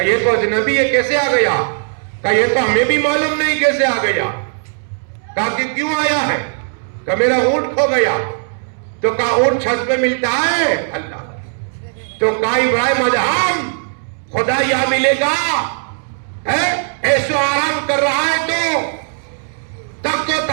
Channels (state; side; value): silent; left; digital silence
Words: یہ تو اجنبی ہے, کیسے آ گیا؟ کہا یہ تو ہمیں بھی معلوم نہیں کیسے آ گیا. کہا کہ کیوں آیا ہے؟ کہا میرا اونٹ کھو گیا. تو کہا اونٹ چھت پہ ملتا ہے؟ اللہ. تو کہا ابراہیم ادہم خدا یہاں ملے گا, ایسو آرام کر رہا ہے تو تخت و